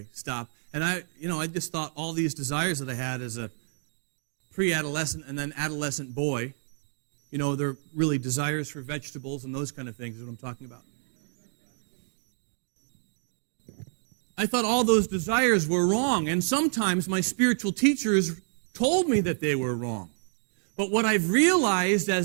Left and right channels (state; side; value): silent; left; digital silence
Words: Stop. And I just thought all these desires that I had as a pre-adolescent and then adolescent boy, they're really desires for vegetables and those kind of things is what I'm talking about. I thought all those desires were wrong, and sometimes my spiritual teachers told me that they were wrong. But what I've realized